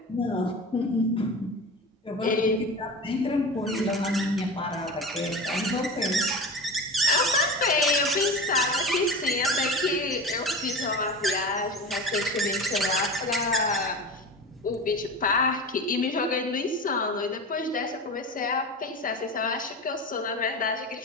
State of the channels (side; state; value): both; normal; correlation 0.30